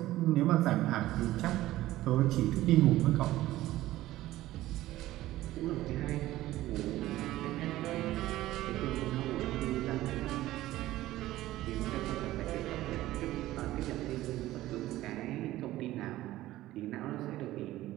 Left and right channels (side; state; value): left; quieter; 15.7 dB